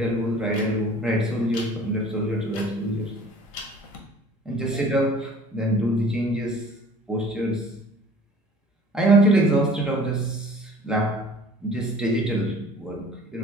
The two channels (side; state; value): both; normal; correlation 0.49